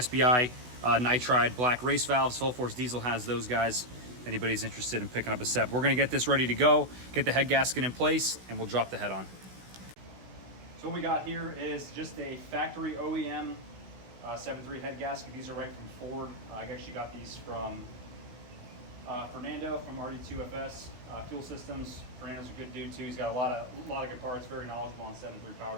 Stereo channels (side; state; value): left; late; 16 ms